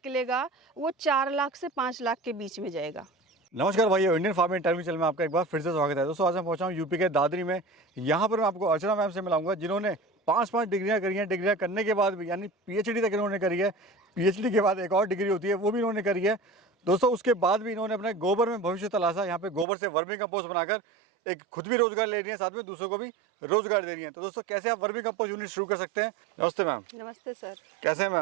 वो 4 लाख से 5 लाख के बीच में जाएगा। नमस्कार भाइयों, इंडियन फार्मिंग टाइम चैनल में आपका एक बार फिर से स्वागत है। दोस्तों आज मैं पहुंचा हूं यूपी के दादरी में। यहाँ पर मैं आपको अर्चना मैम से मिलाऊंगा जिन्होंने 5 डिग्रियां करी हैं। डिग्रियां करने के बाद भी यानी पीएचडी तक इन्होंने करी है। पीएचडी के बाद एक और डिग्री होती है, वो भी इन्होंने करी है। दोस्तों उसके बाद भी इन्होंने अपने गोबर में भविष्य तलाशा। यहाँ पे गोबर से वर्मी कंपोस्ट बनाकर एक खुद भी रोजगार ले रही है, साथ में दूसरों को भी रोजगार दे रही है। तो दोस्तों कैसे आप वर्मी कंपोस्ट यूनिट शुरू कर सकते हैं। नमस्ते मैम। नमस्ते सर। कैसे हैं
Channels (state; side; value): drops out; left; at 19.7 s